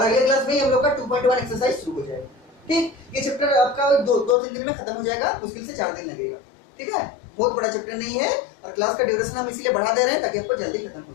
अगले क्लास में हम लोग का 2.1 एक्सरसाइज शुरू हो जाएगा, ठीक। ये चैप्टर आपका 2-3 दिन में खत्म हो जाएगा, मुश्किल से 4 दिन लगेगा, ठीक है, बहुत बड़ा चैप्टर नहीं है, और क्लास का ड्यूरेशन हम इसलिए बढ़ा दे रहे हैं ताकि आपको जल्दी खत्म हो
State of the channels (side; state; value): right; drops out; at 4.4 s